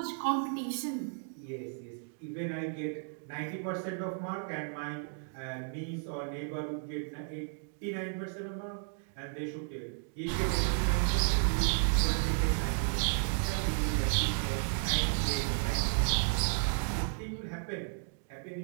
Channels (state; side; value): silent; left; digital silence